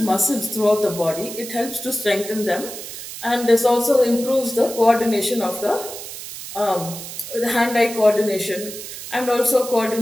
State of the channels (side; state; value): right; noise; hiss, 10 dB below the sound